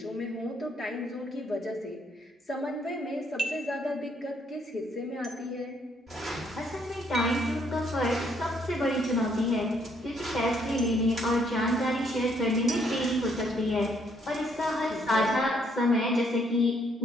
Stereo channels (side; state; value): both; normal; correlation 0.69